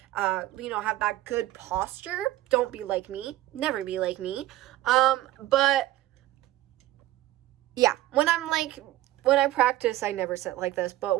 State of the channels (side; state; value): left; quieter; 15.7 dB